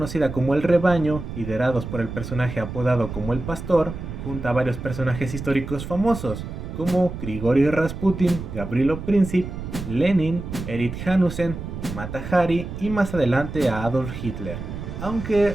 como El Rebaño, liderados por el personaje apodado como El Pastor, junta a varios personajes históricos famosos, como Grigori Rasputin, Gavrilo Princip, Lenin, Erich Hanussen, Mata Hari y más adelante a Adolf Hitler, aunque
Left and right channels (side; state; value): right; noise; rumble, 8 dB below the sound